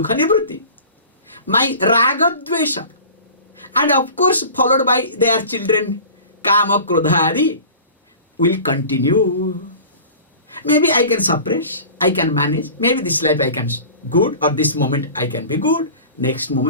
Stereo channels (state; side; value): inverted; both; correlation -0.39